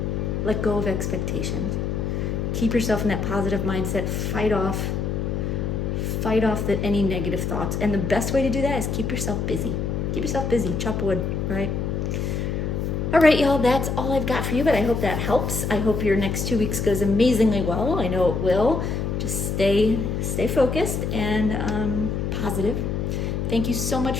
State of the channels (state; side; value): noise; left; hum, 1 dB below the sound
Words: let go of expectations. Keep yourself in that positive mindset. Fight off any negative thoughts. And the best way to do that is keep yourself busy. Keep yourself busy. Chop wood, right? All right, y'all, that's all I've got for you, but I hope that helps. I hope your next 2 weeks goes amazingly well. I know it will. Just stay focused and positive. Thank you so